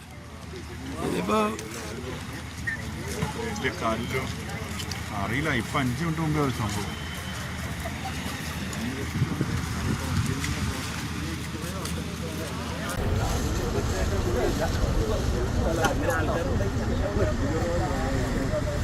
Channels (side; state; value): both; identical; correlation 1.00